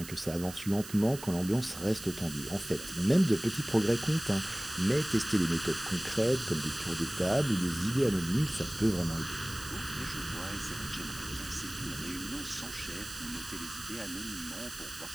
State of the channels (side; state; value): right; noise; hiss, 13 dB below the sound